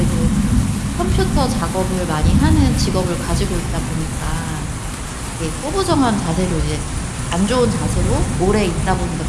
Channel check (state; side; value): identical; both; correlation 1.00